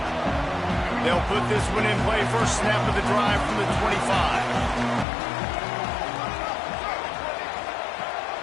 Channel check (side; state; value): right; drops out; at 5.1 s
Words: They'll put this one in play. First snap of the drive from the 25.